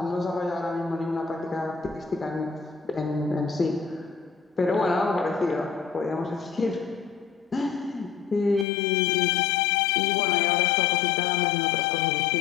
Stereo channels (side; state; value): right; drops out; at 8.7 s